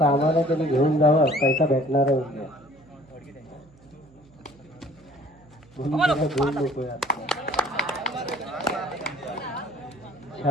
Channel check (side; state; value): right; noise; hum, 27 dB below the sound